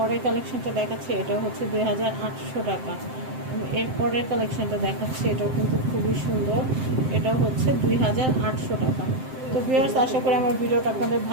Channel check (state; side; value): late; left; 7.7 ms